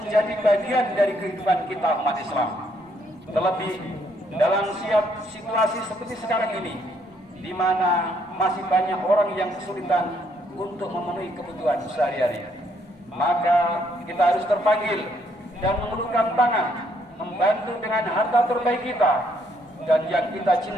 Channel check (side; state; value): both; normal; correlation 0.70